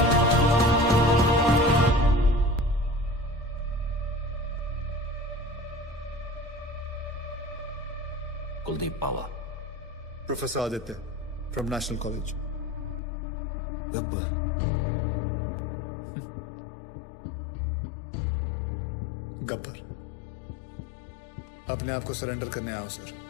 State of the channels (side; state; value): right; drops out; at 13.0 s